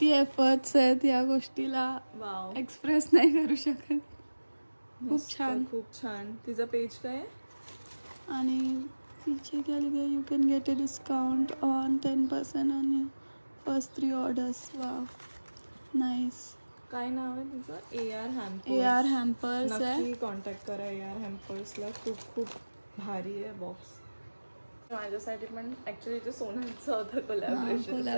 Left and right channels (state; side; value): inverted; both; correlation -1.00